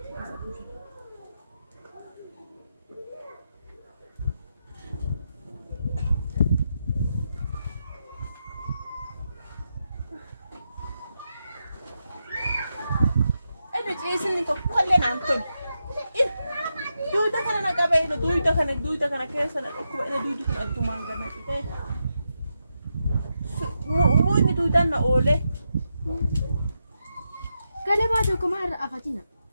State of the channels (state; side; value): inverted; both; correlation -0.86